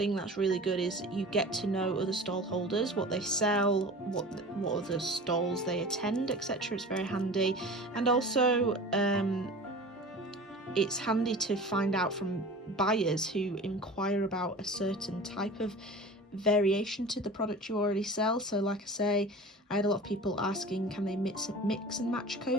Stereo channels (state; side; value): normal; both; correlation 0.37